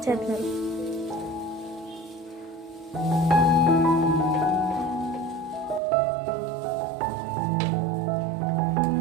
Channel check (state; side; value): drops out; left; at 5.8 s